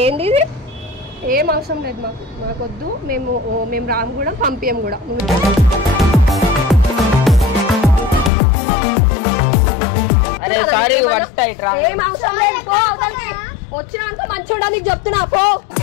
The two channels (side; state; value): right; drops out; at 8.3 s